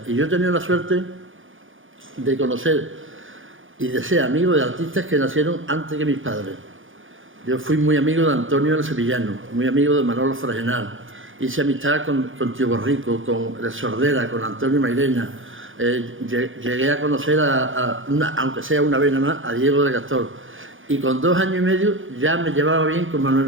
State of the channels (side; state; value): left; late; 0.58 ms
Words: Y yo he tenido la suerte de conocer y de ser amigo de artistas que nacieron antes que mis padres. Yo fui muy amigo de Antonio el Sevillano, muy amigo de Manolo Fragenal. Hice amistad con Tío Borrico, con el Sordera, con Antonio Mairena. Llegué a conocer, aunque sea una vez nada más, a Diego de Gastor. Y con 2 años y medio ya me llevaba bien con